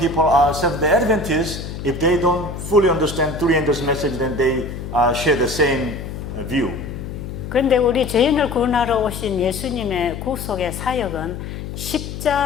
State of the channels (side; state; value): left; noise; hum, 8 dB below the sound